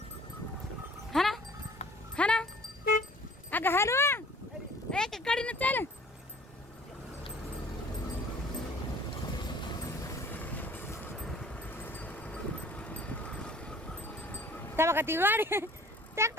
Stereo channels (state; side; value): normal; both; correlation 0.51